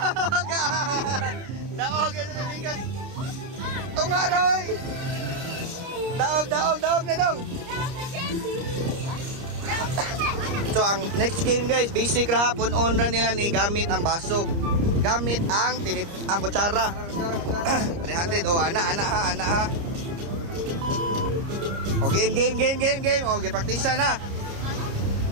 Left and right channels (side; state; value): left; late; 30 ms